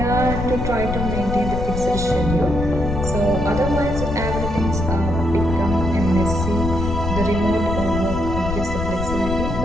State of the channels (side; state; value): left; noise; rumble, 4 dB below the sound